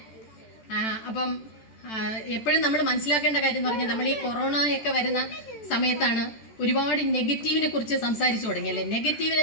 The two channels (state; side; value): late; right; 14 ms